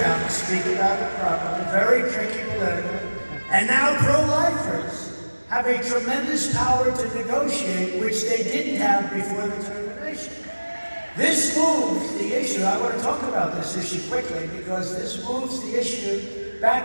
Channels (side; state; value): both; inverted; correlation -1.00